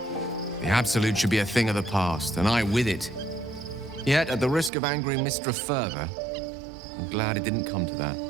The Absolute should be a thing of the past, and I with it. Yet, at the risk of angering Mistra further, I'm glad it didn't come to that,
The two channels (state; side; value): drops out; left; at 4.7 s